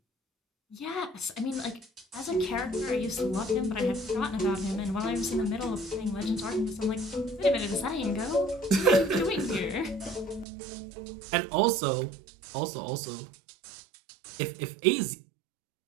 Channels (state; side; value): drops out; left; at 10.5 s